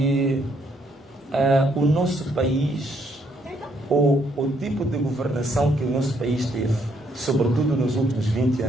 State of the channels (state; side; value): normal; both; correlation 0.71